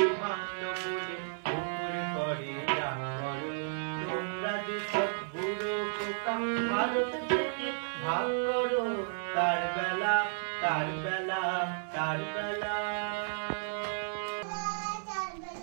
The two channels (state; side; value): silent; left; 55 dB below the other